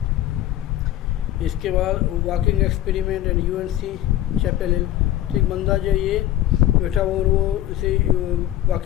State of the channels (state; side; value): quieter; right; 13.1 dB